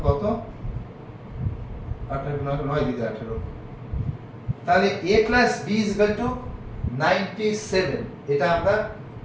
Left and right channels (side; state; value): both; identical; correlation 1.00